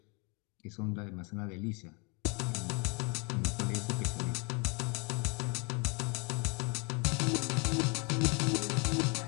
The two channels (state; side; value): quieter; right; 32.0 dB